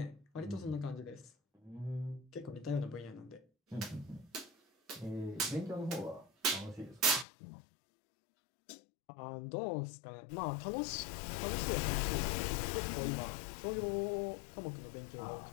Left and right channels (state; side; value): drops out; right; at 7.2 s